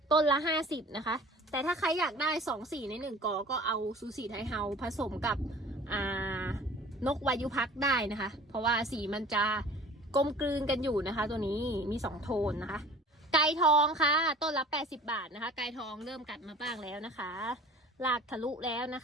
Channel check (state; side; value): normal; both; correlation 0.46